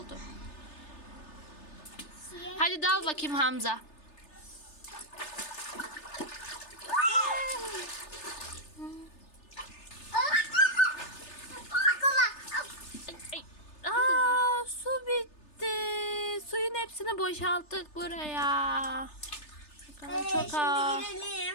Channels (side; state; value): right; late; 3.3 ms